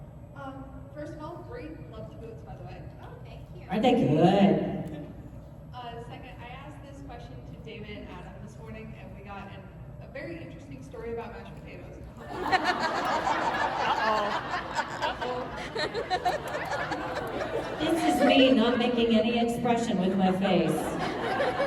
First of all, great. Love the boots, by the way. Oh, thank you. Aren't they good? Second, I asked this question to David and Adam this morning, and we got a very interesting story about mashed potatoes. This is me not making any expression with my face.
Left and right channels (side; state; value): both; identical; correlation 1.00